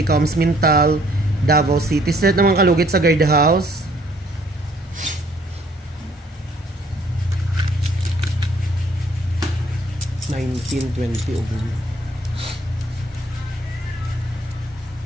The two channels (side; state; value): both; normal; correlation 0.62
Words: Mintal, Davao City. Straight naman kalugit sa guardhouse. $19.20 ubo.